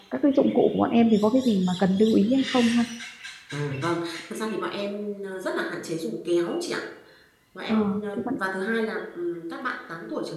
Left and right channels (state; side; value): identical; both; correlation 1.00